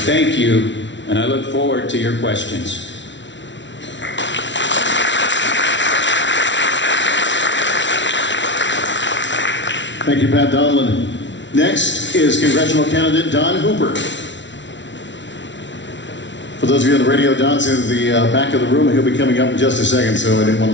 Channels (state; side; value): late; right; 0.53 ms